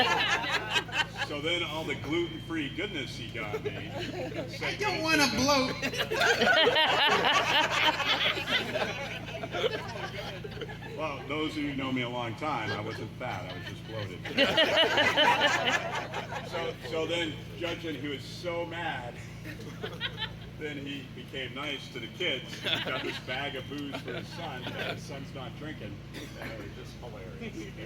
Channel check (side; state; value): both; identical; correlation 1.00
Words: so then all the gluten-free goodness he got me. I don't want to bloat. Well, those of you who know me a long time, I wasn't fat, I was just bloated. so then, judging he was so mad, then he became nice to the kids. He got this bag of booze for his son, but his son's not drinking. And it was just hilarious.